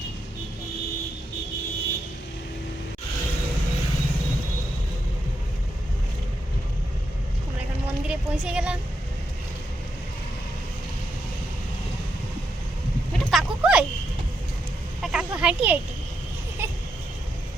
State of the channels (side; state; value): both; normal; correlation 0.82